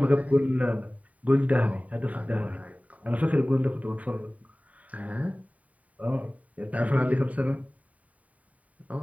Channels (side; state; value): left; late; 0.069 ms